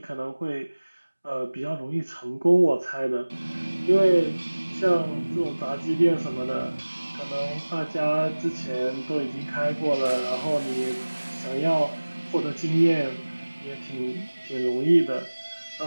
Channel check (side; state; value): both; inverted; correlation -1.00